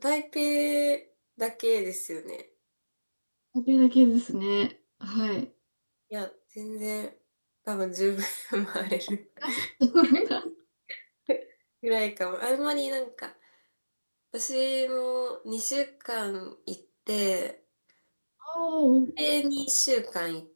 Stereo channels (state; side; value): inverted; both; correlation -1.00